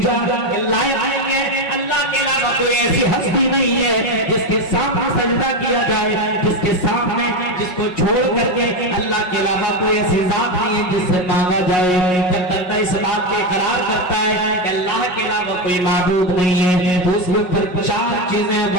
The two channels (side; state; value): right; late; 5.5 ms